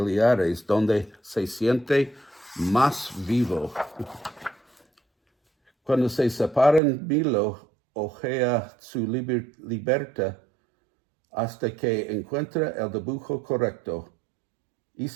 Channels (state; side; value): drops out; left; at 6.8 s